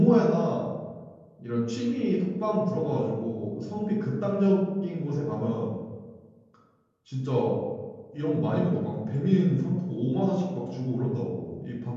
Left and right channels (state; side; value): identical; both; correlation 1.00